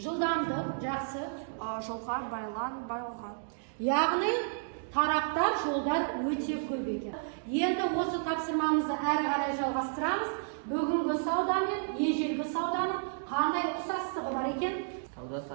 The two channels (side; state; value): left; silent; digital silence